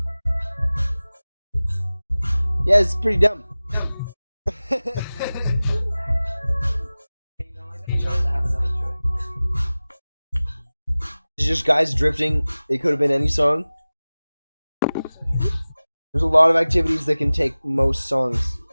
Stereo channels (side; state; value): both; inverted; correlation -0.98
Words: Yeah, it's pretty dumb. It's just guys drifting. It could have been any song. There's a lot of activities that can take most songs.